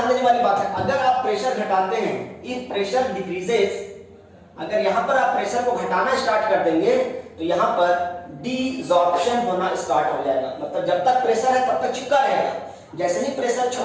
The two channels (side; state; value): both; identical; correlation 1.00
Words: देने वाली बात है, अगर आप प्रेशर घटाते हैं, इफ प्रेशर डिक्रीजेस, अगर यहां पर आप प्रेशर को घटाना स्टार्ट कर देंगे तो यहां पर डिसॉर्प्शन होना स्टार्ट हो जाएगा। मतलब जब तक प्रेशर है तब तक चिपका रहेगा, जैसे ही प्रेशर